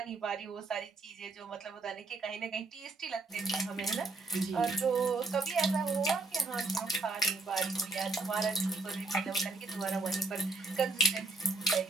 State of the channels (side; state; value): left; quieter; 3.3 dB